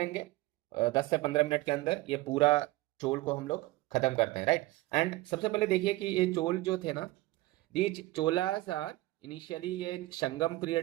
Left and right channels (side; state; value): left; quieter; 19.1 dB